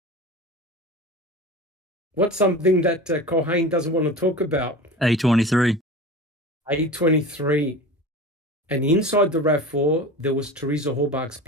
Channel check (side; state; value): both; normal; correlation 0.32